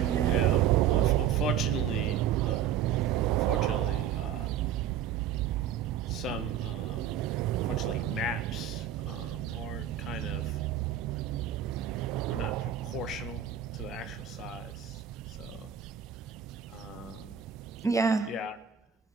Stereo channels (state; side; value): quieter; left; 9.0 dB